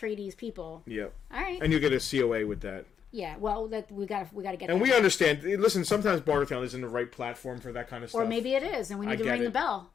people. Yep. All right. And you get a COA with that. Yeah, well, we got to get. And we understand. Listen, sometimes Bartertown isn't the right platform for that kind of stuff. Or maybe it is, and we need to ring the bell.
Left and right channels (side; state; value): right; quieter; 7.7 dB